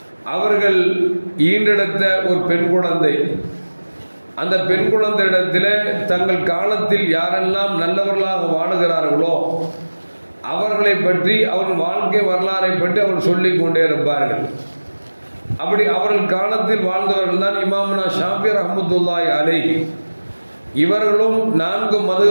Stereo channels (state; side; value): inverted; both; correlation -1.00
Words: அவர்கள் ஈன்றெடுத்த ஒரு பெண் குழந்தை. அந்த பெண் குழந்தை இடத்திலே தங்கள் காலத்தில் யாரெல்லாம் நல்லவர்களாக வாழுகிறார்களோ அவர்களை பற்றி அவர்கள் வாழ்க்கை வரலாறை பற்றி அவர்கள் சொல்லிக் கொண்டே இருப்பார்கள். அப்படி அவர்கள் காலத்தில் வாழ்ந்தவர்கள் தான் இமாமுனா ஷாஃபி ரஹ்மத்துல்லாஹி அலைஹி. இவர்களும் 4